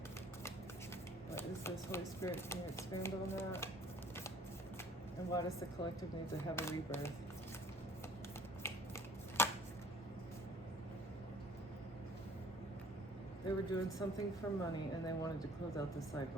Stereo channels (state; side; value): normal; both; correlation 0.52